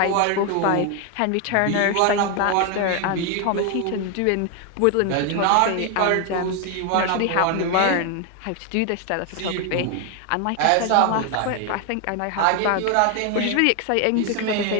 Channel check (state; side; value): different; both; correlation 0.01